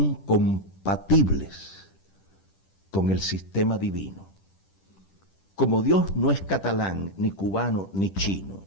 compatibles con el sistema divino. Como Dios no es catalán, ni cubano, ni chino,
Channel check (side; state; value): right; late; 10 ms